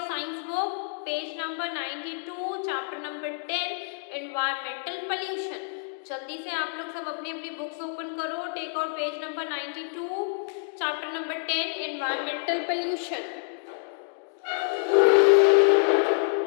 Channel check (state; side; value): silent; right; digital silence